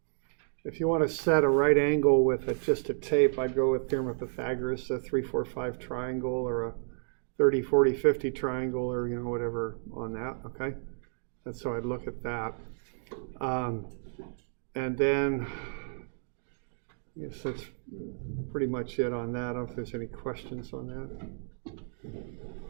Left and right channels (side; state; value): left; silent; digital silence